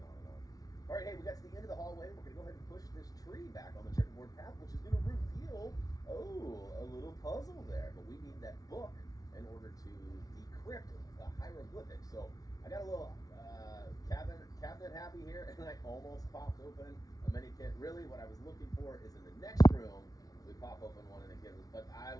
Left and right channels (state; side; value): late; right; 0.18 ms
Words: on and on. All right, hey, we got to the end of the hallway. We're going to go ahead and push this tree back on the checkerboard path, which is going to reveal, a little puzzle there. But we need that book in order to decrypt the hieroglyphics. So I got a little cabinet happy here, and I almost popped open a mini kit. Really, what I was looking for is in the next room. We pop open one and it gives us, but I